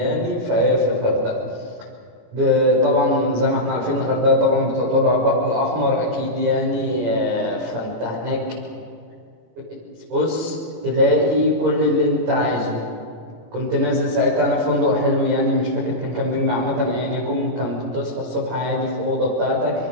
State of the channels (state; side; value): late; left; 17 ms